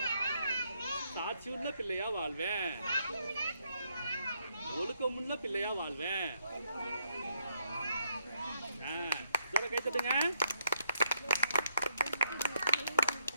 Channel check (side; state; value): both; inverted; correlation -0.74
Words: சாட்சியுள்ள பிள்ளையா வாழ்வேன். ஒழுக்கமுள்ள பிள்ளையா வாழ்வேன். கை தட்டுங்க.